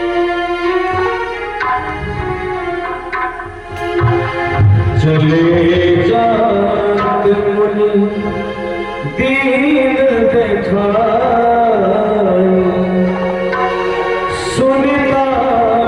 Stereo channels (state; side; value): identical; both; correlation 1.00